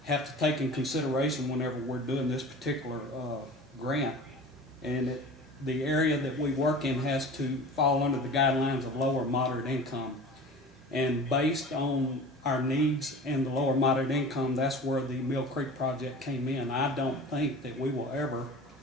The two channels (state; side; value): normal; both; correlation 0.37